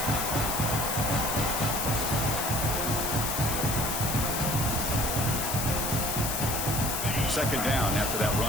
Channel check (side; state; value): left; noise; hiss, 2 dB below the sound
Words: Second down after that